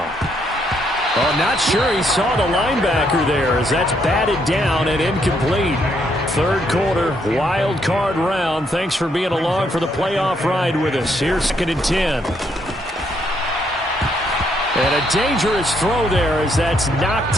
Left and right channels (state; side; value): normal; both; correlation 0.73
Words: Well, not sure he saw the linebacker there as that's batted down and incomplete. Third quarter, wild card round. Thanks for being along for the playoff ride with us. Here's 2nd and 10. And a dangerous throw there as that's